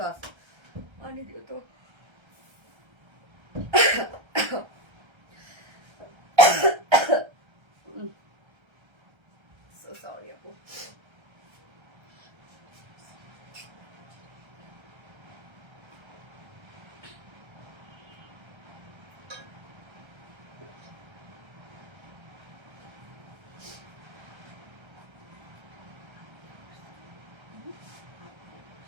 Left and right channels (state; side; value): late; left; 1.3 ms